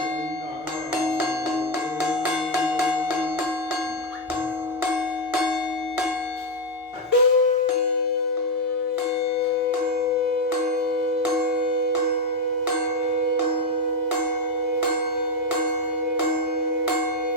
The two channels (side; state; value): both; normal; correlation 0.05